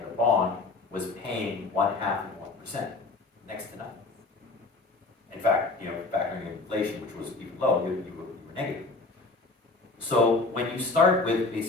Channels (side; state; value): right; quieter; 3.6 dB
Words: bond was paying 0.5%, next to nothing. In fact, factoring in inflation, which was even low, you were negative. So when you start with